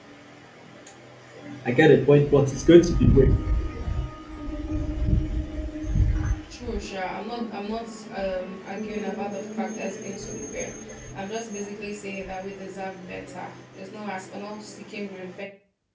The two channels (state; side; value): identical; both; correlation 1.00